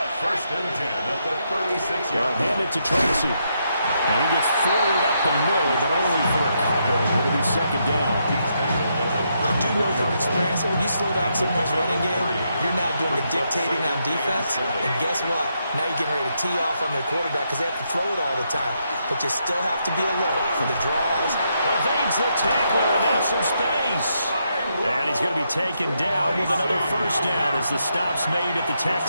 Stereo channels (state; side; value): inverted; both; correlation -0.79